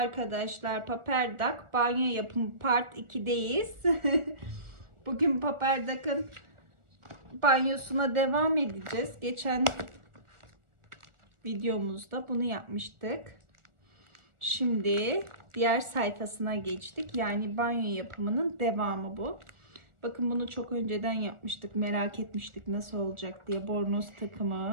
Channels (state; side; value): late; left; 1.4 ms